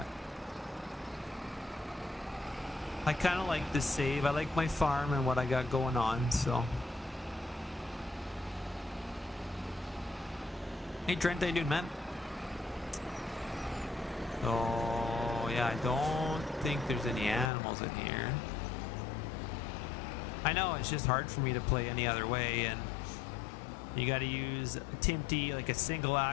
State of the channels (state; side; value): drops out; right; at 17.5 s